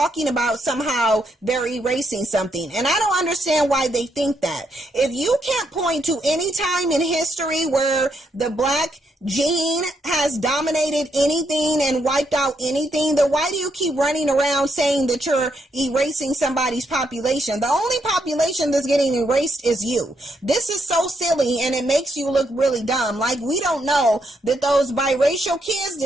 about somehow they're erasing something. And I don't understand why they think that. If you can't point to any time in history where the black gene has dominated anything and wiped out anything, then why do you keep running around saying that you're erasing somebody's population? The only population that's getting erased is you. This is so silly, and it makes you look really dumb. Like we don't know that those biracial kids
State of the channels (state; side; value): normal; both; correlation 0.77